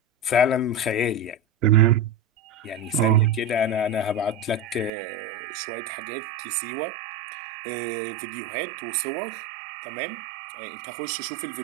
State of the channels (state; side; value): drops out; left; at 4.9 s